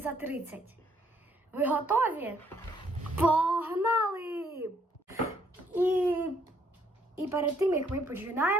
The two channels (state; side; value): normal; both; correlation 0.68